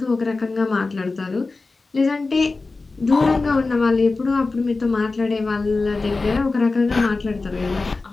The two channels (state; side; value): quieter; right; 3.7 dB